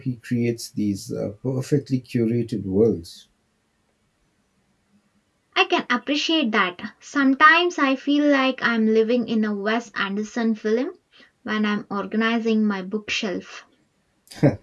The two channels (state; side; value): identical; both; correlation 1.00